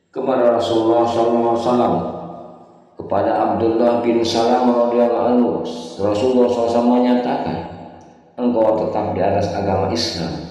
Kepada Rasulullah SAW, kepada Abdullah bin Salam radhiyallahu anhu, Rasulullah SAW menyatakan, "Engkau tetap di atas agama Islam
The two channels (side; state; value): both; identical; correlation 1.00